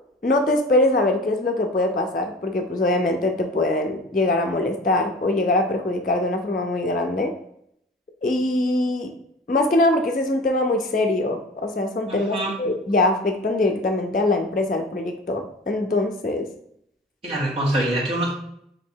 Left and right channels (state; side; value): normal; both; correlation 0.39